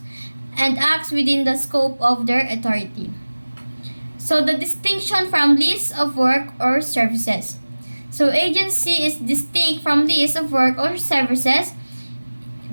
and acts within the scope of their authority. So the distinction from lease of work or services. So agency is distinct from lease of work or services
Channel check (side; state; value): both; inverted; correlation -1.00